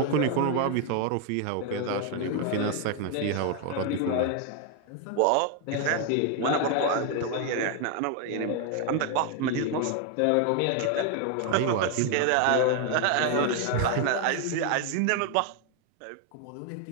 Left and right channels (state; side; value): different; both; correlation 0.01